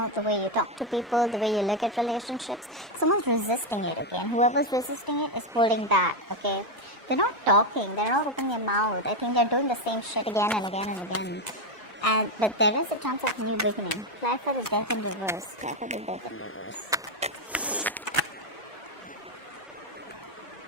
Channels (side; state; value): both; normal; correlation 0.06